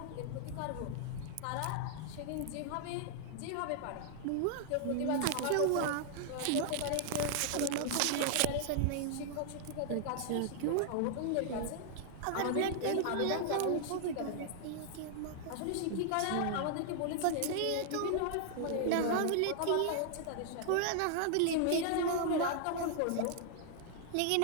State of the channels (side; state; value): both; different; correlation 0.00